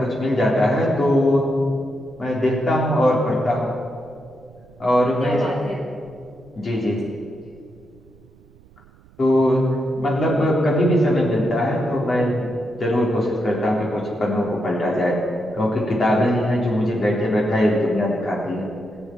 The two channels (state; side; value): noise; right; rumble, 27 dB below the sound